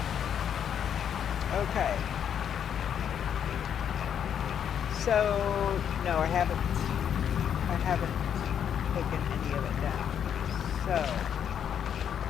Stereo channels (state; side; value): quieter; right; 8.6 dB